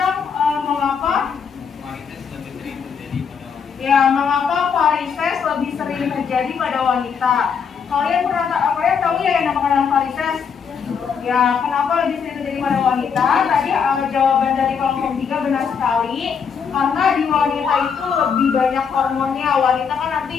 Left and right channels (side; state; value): right; quieter; 6.5 dB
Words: mengapa varises lebih sering terjadi pada wanita. Kalian tahu ya yang namanya varises? Ya, kenapa lebih sering terjadi pada wanita? Tadi jawaban dari kelompok 3 benar sekali. Karena di wanita itu lebih banyak hormonnya. Wanita kan